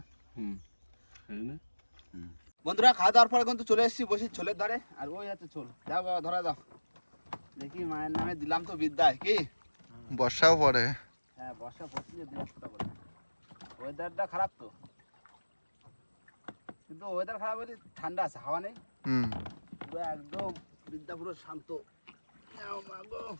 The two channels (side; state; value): both; inverted; correlation -1.00